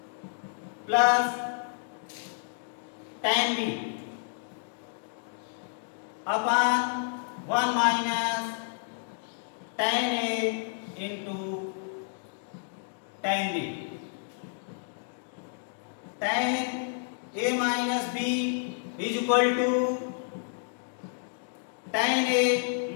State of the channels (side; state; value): right; silent; 58 dB below the other